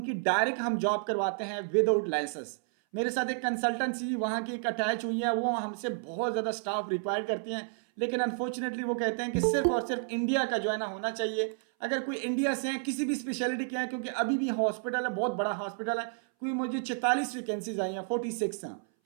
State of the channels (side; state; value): left; silent; 57 dB below the other